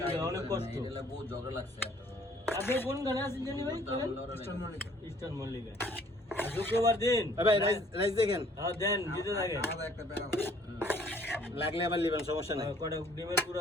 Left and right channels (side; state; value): both; normal; correlation 0.59